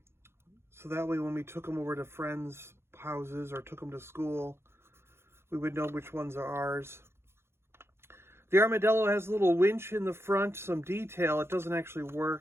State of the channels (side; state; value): left; late; 0.12 ms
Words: that way when we took them over to friends' houses or took them to school, we would know which ones are ours. The Armadillo has a little winch in the front, some detail. It doesn't actually